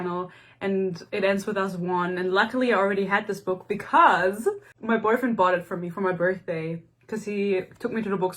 and It Ends With Us won, and luckily I already had this book because my boyfriend bought it for me for my birthday, because he took me to the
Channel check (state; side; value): identical; both; correlation 1.00